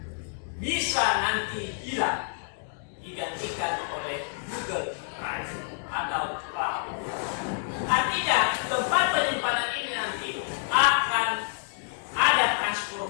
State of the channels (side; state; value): right; silent; 59 dB below the other